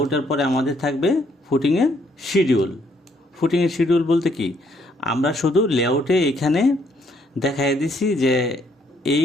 পরে আমাদের থাকবে ফুটিংয়ের শিডিউল বলতে কি, আমরা শুধু লেআউটে এখানে দেখাই দিছি যে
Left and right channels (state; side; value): normal; both; correlation 0.69